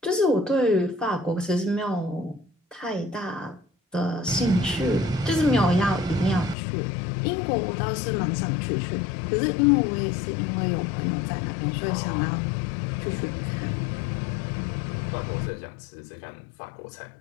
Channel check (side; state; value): right; drops out; at 6.6 s